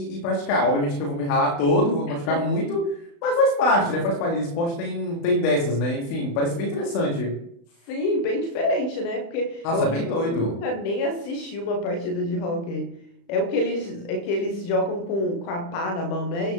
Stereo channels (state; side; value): late; right; 35 ms